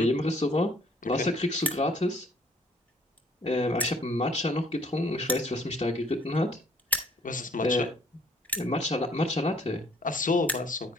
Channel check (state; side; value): normal; both; correlation 0.60